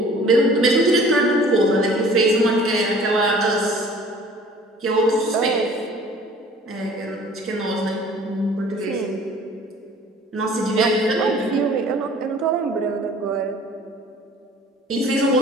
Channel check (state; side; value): normal; both; correlation 0.50